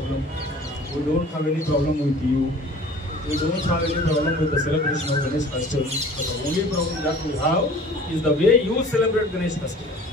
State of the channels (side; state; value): both; normal; correlation 0.47